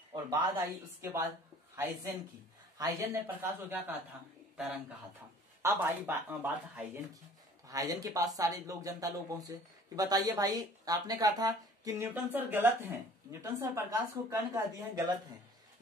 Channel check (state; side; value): normal; both; correlation 0.50